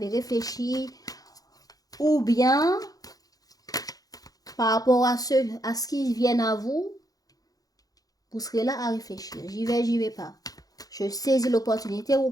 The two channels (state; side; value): late; right; 0.18 ms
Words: réfléchi, ou bien par rapport à ce qui viennent à vous, vous serez là à réfléchir. J'y vais pas. Je saisis l'opportunité ou